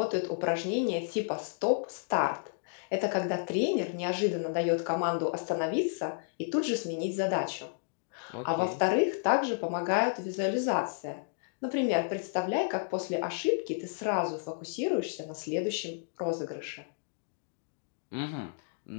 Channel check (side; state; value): right; silent; digital silence